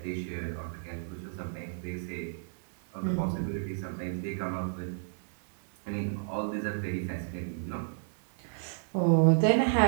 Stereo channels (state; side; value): silent; left; 57 dB below the other